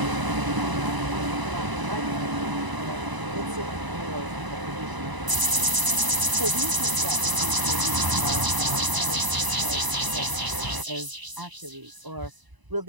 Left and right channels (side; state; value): left; late; 1.0 ms